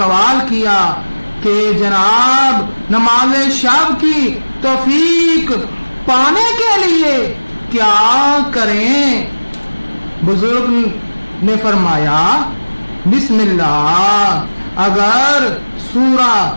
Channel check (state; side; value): inverted; both; correlation -1.00